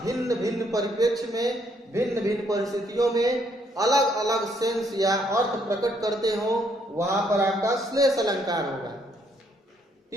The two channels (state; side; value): normal; both; correlation 0.70